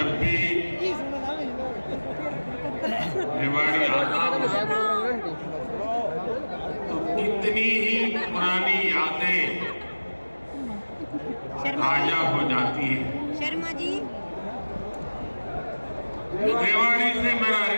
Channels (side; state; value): both; inverted; correlation -1.00